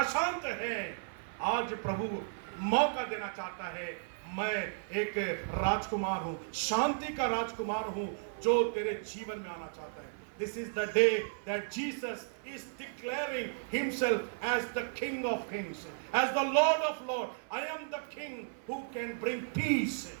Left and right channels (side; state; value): left; silent; 55 dB below the other